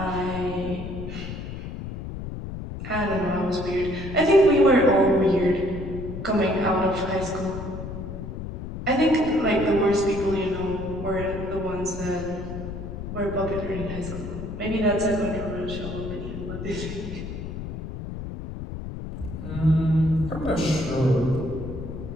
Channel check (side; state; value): left; noise; rumble, 8 dB below the sound